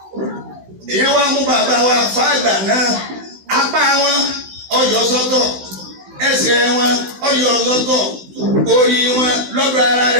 Èyí wá mú bàbá wa fàgbà náà apá wọn ọyọ sọ́tọ̀ ẹsẹ̀ wọn ọyọ sọ́tọ̀ orí wọn lọ́dọ̀ ara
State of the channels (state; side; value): late; left; 16 ms